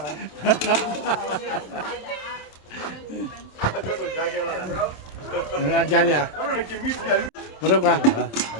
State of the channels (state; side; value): late; right; 27 ms